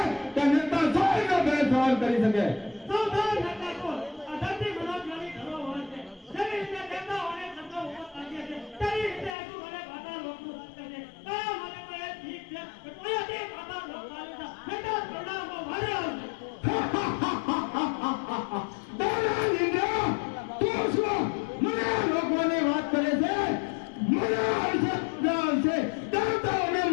કે નેતા સોયનો બે સવાલ કરી શકે? સૌધાન હતા કોણ? આ ધરતી મનોજ્ઞાની ધરોહર છે. જેવી રીતે દેવતાઓને શબ્દો ઉભો કાઢીએ છે, તેવી રીતે હજુ મને પાતાળ લોકનું સત્ય છે. તારા માટે તો એ ઠીક છે કે કોઈથી પાતાળ લોક ચાલે છે. નહીંતર પ્રણામો ભારે આવશે. દેવરાજ ઇન્દ્ર તું શું મને રોકવાની વાત કરે છે? મને આવશે દેવતાઓને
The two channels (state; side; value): drops out; right; at 9.3 s